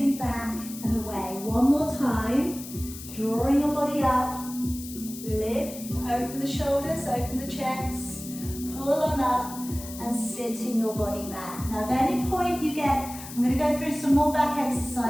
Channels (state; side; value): noise; left; hiss, 13 dB below the sound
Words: back and away. One more time. Drawing your body up, lift, open the shoulders, open the chest, pull on up and sitting your body back. Now at any point you get, I'm going to go through some more back